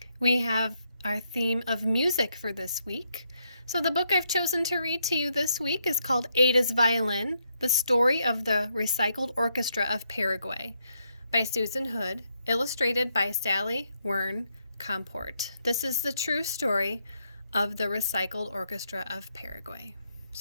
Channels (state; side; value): inverted; both; correlation -0.78